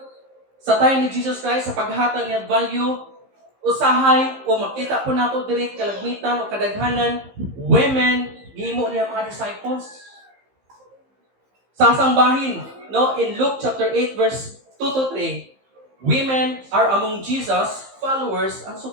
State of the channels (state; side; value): late; left; 15 ms